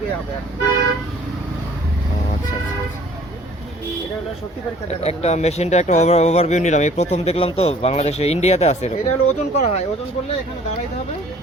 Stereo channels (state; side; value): normal; both; correlation 0.54